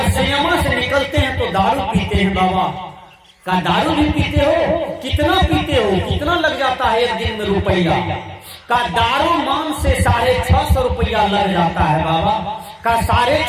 सिनेमा से निकलते हैं तो दारू पीते हैं बाबा। का दारू भी पीते हो? कितना पीते हो? कितना लग जाता है एक दिन में रुपया? का दारू मान से 650 रुपया लग जाता है बाबा। का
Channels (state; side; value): identical; both; correlation 1.00